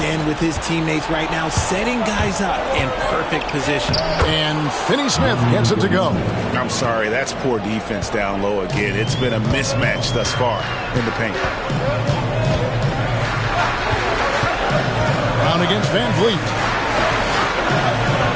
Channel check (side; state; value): both; identical; correlation 1.00